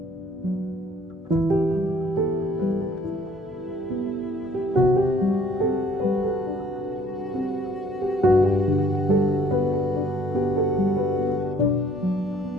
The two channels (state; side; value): normal; both; correlation 0.58